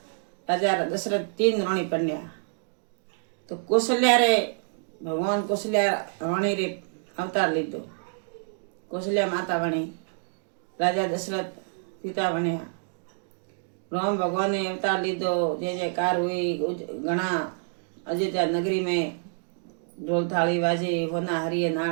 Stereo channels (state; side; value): silent; left; 60 dB below the other